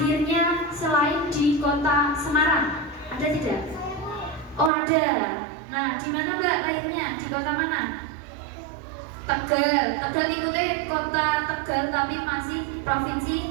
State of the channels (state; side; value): drops out; left; at 4.7 s